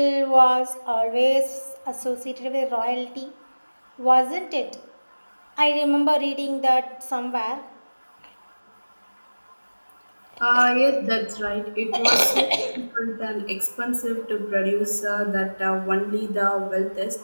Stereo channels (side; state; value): both; inverted; correlation -1.00